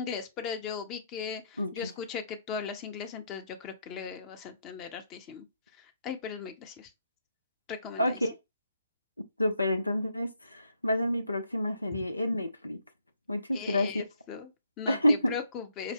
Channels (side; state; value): both; inverted; correlation -0.75